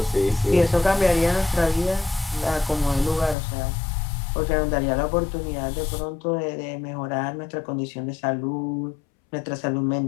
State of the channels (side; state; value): right; drops out; at 3.4 s